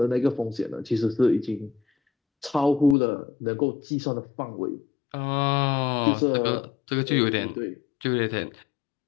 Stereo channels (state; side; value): drops out; right; at 3.0 s